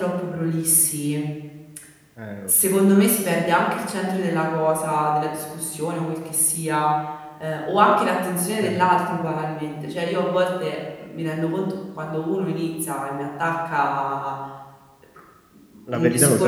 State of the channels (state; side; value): identical; both; correlation 1.00